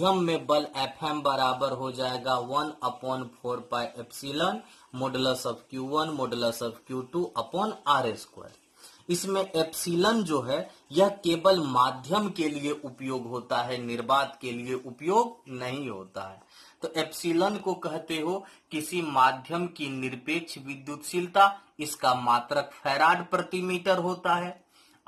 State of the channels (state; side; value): identical; both; correlation 1.00